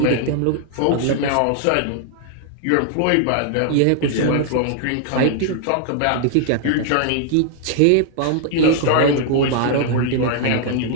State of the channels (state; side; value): different; both; correlation 0.00